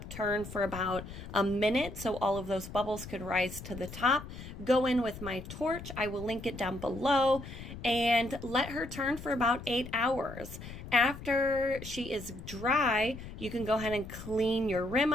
turn for about a minute so all of those bubbles could rise to the top. Go in with my torch, I will link it down below, and let her turn for about 8 hours. After she is dry, you can go ahead and clean your rim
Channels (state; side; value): noise; left; rumble, 12 dB below the sound